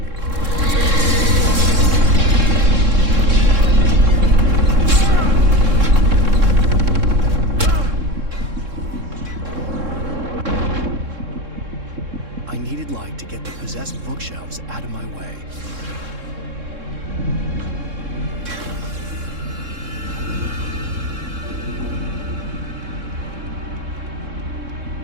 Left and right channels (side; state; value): left; late; 3.7 ms